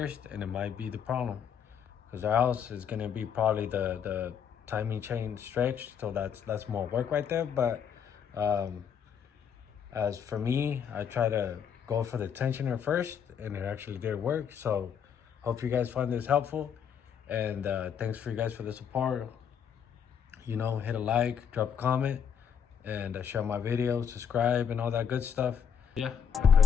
and it might be the problem, because else it's gonna be probably the timing chain stretched. So that's more work right there. But as for me, I try to go for the tensioner first, and it actually did work. So hope you guys find this helpful, and thanks for you guys for the support. You know, hit a like, drop a comment, and share my videos, subscribe, and all that good stuff. Yeah, I'll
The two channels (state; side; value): quieter; right; 7.8 dB